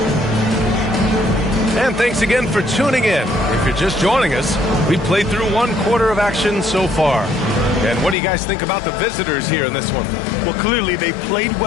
And thanks again for tuning in. If you're just joining us, we've played through 1 quarter of action so far. And what do you guys think about the visitors here in this one? Well, clearly they played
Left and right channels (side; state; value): right; drops out; at 8.2 s